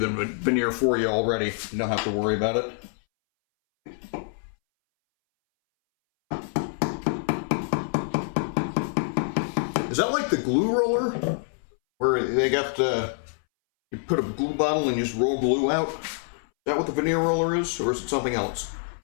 veneer for you already. You don't have to worry about it. Is that like the glue roller? Where they got you put a glue bottle and you just roll glue out? Is that what the veneer roller is? Or is it something else?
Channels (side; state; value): right; silent; 61 dB below the other